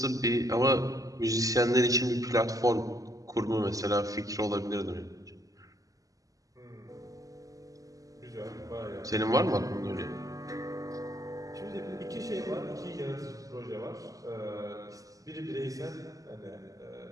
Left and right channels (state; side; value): late; left; 0.17 ms